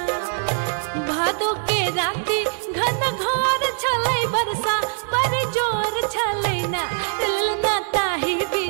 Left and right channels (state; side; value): silent; left; digital silence